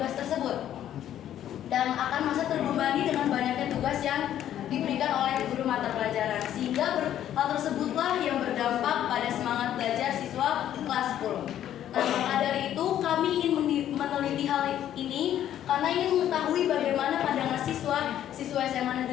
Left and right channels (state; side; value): quieter; right; 11.2 dB